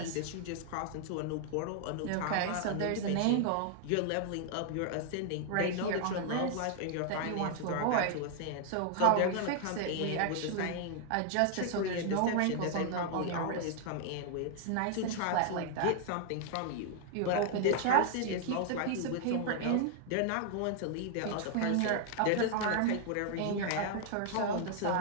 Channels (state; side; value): different; both; correlation 0.00